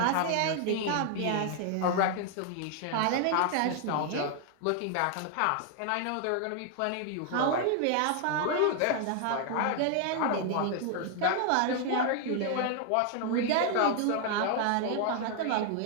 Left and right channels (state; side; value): different; both; correlation 0.00